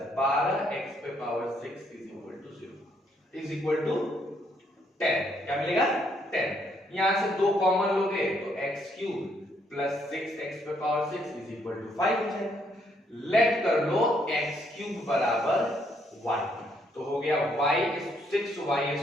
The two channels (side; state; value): both; normal; correlation 0.71